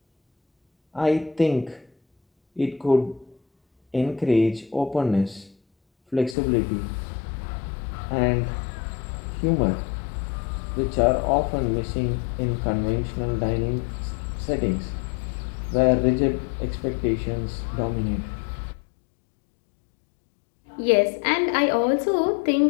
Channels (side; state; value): right; drops out; at 6.4 s